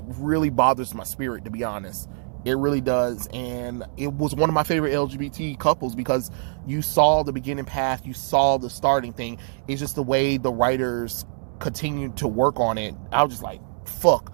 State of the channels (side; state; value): left; silent; digital silence